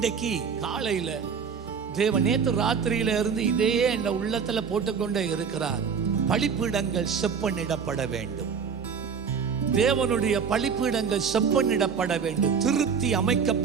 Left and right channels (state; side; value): quieter; left; 6.4 dB